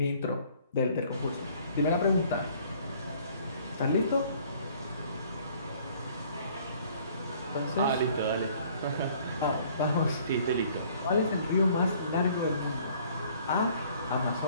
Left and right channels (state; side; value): inverted; both; correlation -0.57